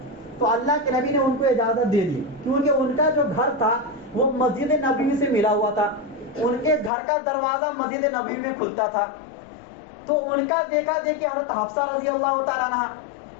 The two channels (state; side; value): drops out; right; at 6.9 s